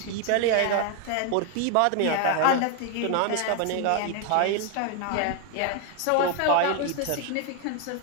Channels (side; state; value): both; different; correlation 0.01